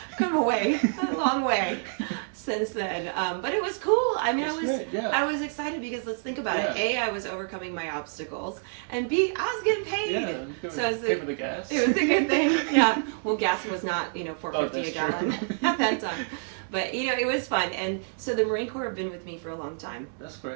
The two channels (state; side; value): silent; left; 60 dB below the other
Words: Come away, a long way since then. But it was cool. I mean, I was excited because let's think about it. A, I was overcoming my obstacles, and B, I was getting paid. Yeah, so pay for the gas. It was a good thing. Yeah. Well, gas was not $4.50 a gallon at that time. But it was fun, and so the Marine Corps have been with me for a long time. That's